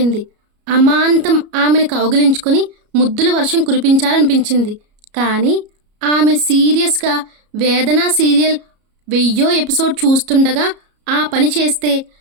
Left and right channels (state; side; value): late; left; 33 ms